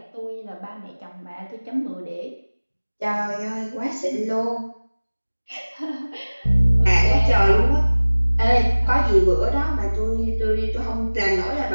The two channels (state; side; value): inverted; both; correlation -1.00